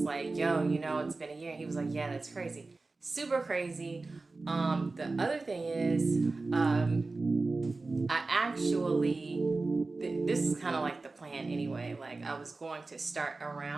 like, yo, it's been a year. And he was like, yeah, that's crazy. Super crazy. The other thing is, I actually, this is kind of like the plan anyway. Like, I was going to start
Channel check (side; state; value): left; quieter; 3.6 dB